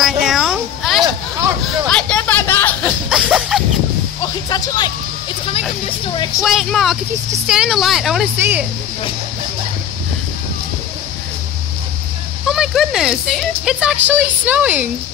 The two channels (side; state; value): right; quieter; 9.4 dB